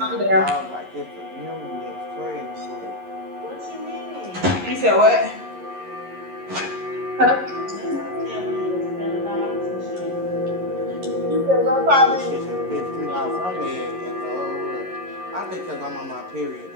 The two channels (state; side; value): late; left; 11 ms